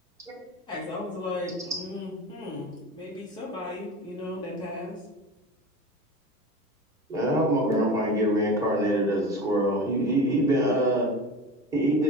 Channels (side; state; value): both; normal; correlation 0.31